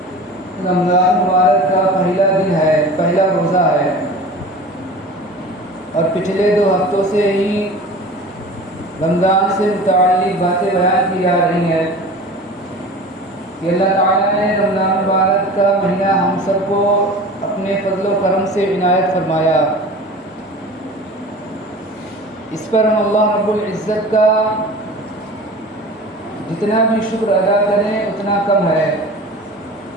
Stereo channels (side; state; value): both; normal; correlation 0.38